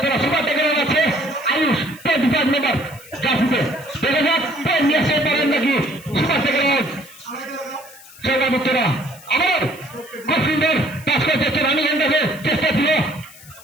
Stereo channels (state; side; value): noise; left; hiss, 20 dB below the sound